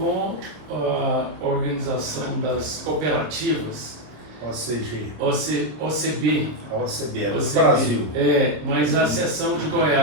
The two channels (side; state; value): left; late; 26 ms